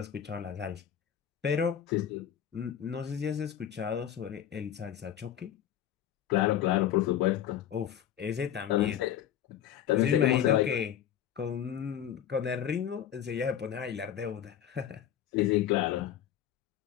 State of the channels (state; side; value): quieter; right; 10.1 dB